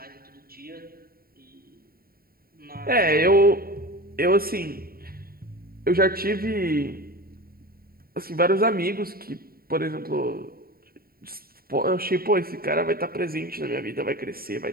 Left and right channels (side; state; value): left; late; 0.43 ms